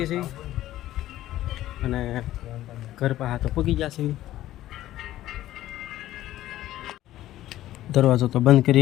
છીએ અને ઘર પાસે તો પૂગી ગયા છીએ. દરવાજો તો બંધ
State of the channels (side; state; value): right; quieter; 14.2 dB